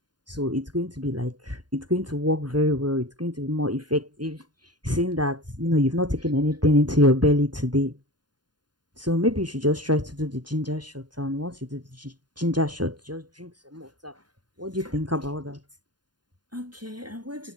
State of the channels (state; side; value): late; left; 0.70 ms